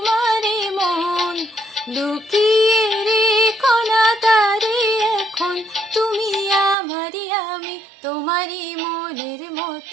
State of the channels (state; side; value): drops out; left; at 6.8 s